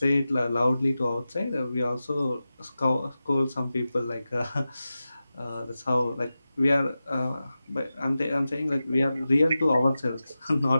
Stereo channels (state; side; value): inverted; both; correlation -0.94